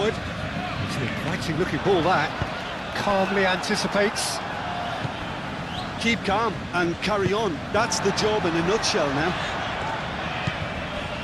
It's an inviting looking ball, that. Calmly anticipates. Keep calm and carry on. That's the job in a nutshell now.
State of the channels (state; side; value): identical; both; correlation 1.00